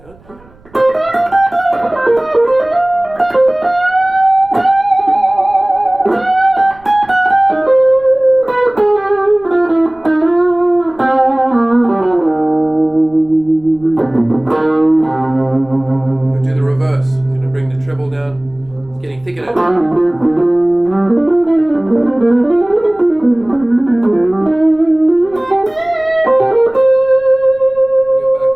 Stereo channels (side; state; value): right; noise; rumble, 28 dB below the sound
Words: Do the reverse. I'm going to bring the treble down. It's getting thicker now.